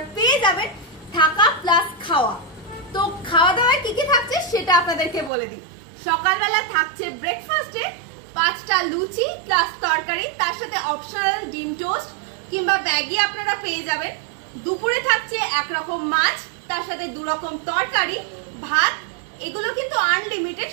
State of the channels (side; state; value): left; drops out; at 5.3 s